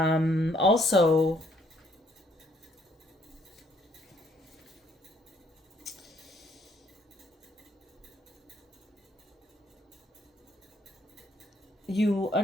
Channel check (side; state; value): both; normal; correlation 0.68